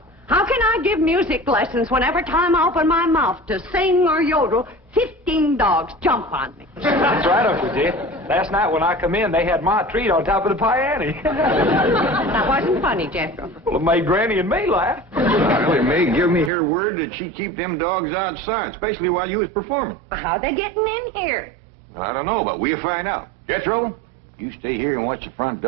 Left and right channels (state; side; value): drops out; left; at 16.5 s